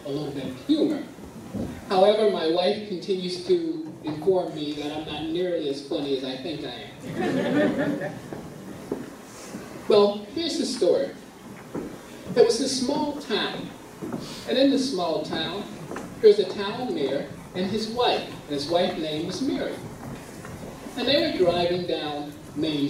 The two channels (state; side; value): identical; both; correlation 1.00